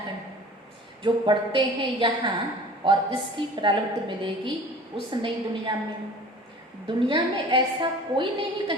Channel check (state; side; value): normal; both; correlation 0.44